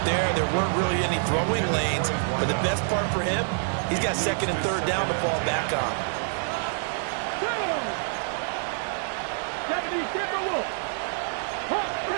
there. There weren't really any throwing lanes. But the best part for him, he's got 2nd and 3rd down to fall back on. 70 Timberwolves. Hawk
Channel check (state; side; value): silent; left; digital silence